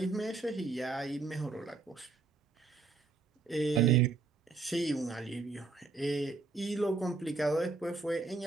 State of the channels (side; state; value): left; quieter; 4.1 dB